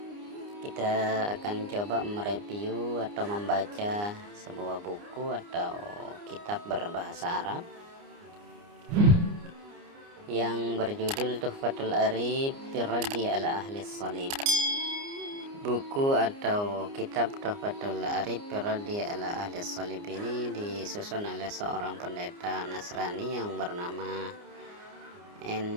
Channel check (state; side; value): late; left; 29 ms